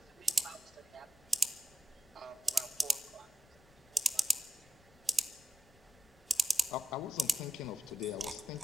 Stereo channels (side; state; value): left; noise; rumble, 27 dB below the sound